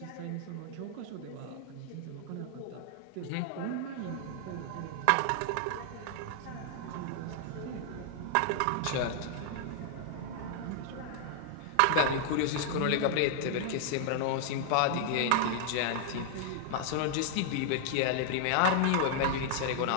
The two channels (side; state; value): both; different; correlation -0.01